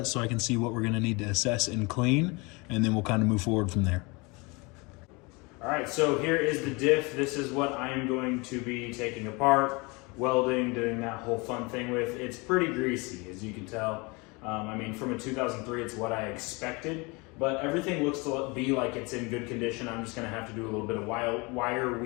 so I can see what we're gonna need to assess and clean, and then we'll kind of move forward from there. All right, so here is the diff. This is what I am going to be taking apart, welding, doing that whole fun thing with. It's pretty greasy, as you can tell. I mean, from a 2003, it's what I expected, but everything looks to be like it's in good condition. I'm just gonna have to do a little bit of wire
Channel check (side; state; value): right; quieter; 27.3 dB